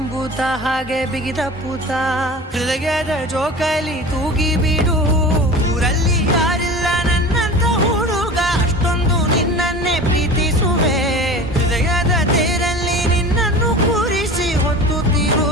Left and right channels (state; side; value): normal; both; correlation 0.36